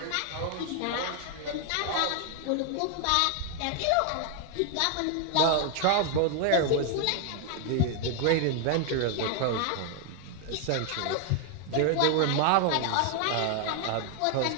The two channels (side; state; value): both; different; correlation 0.00